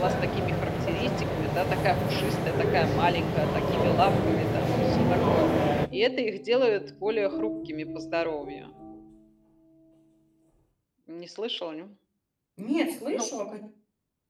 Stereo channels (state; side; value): identical; both; correlation 1.00